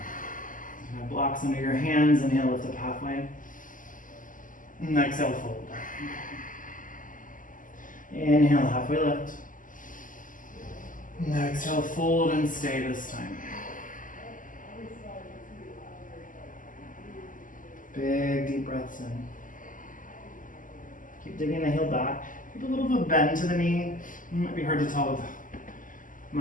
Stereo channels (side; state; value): right; late; 0.38 ms